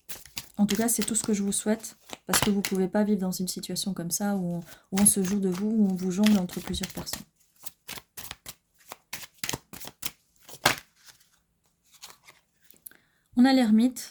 En tout cas, c'est tout ce que je vous souhaite, parce que vous ne pouvez pas vivre dans une situation comme ça, où on se joue de vous, où on vous jongle entre plusieurs personnes. On a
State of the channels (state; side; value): identical; both; correlation 1.00